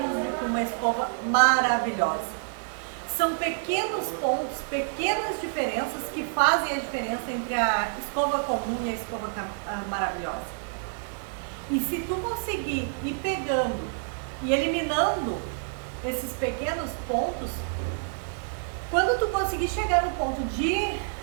do que uma escova maravilhosa. São pequenos pontos, pequenas diferenças que fazem a diferença entre a escova comum e a escova maravilhosa. E se tu conseguir ir pegando e eliminando esses pequenos pontos, quando tu conseguir chegar no ponto de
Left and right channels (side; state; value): left; silent; digital silence